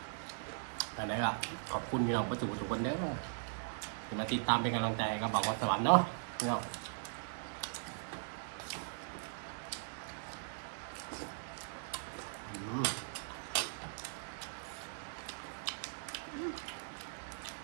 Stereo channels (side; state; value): left; silent; digital silence